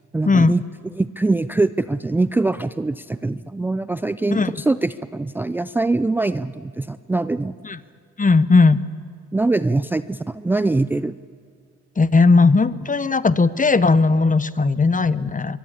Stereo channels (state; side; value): normal; both; correlation 0.82